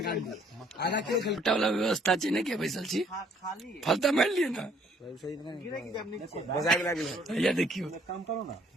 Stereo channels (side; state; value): both; normal; correlation 0.62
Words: आधा किलो वाला व्यवस्था छै ने के बैसल छी, फलता मार लिए ना। ये देखियो काम करो ना,